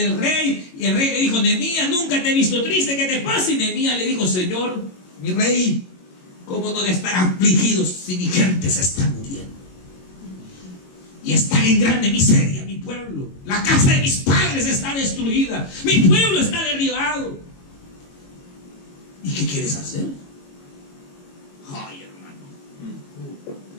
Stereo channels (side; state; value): right; late; 22 ms